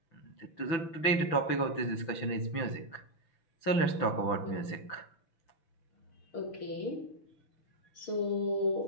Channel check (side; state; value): right; late; 6.0 ms